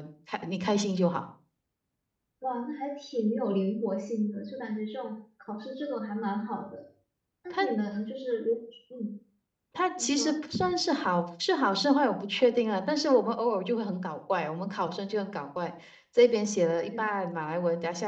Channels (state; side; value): identical; both; correlation 1.00